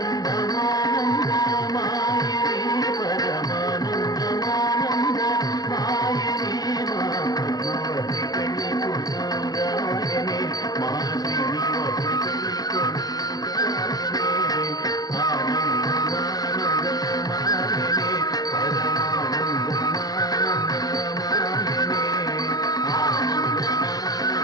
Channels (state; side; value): late; right; 0.19 ms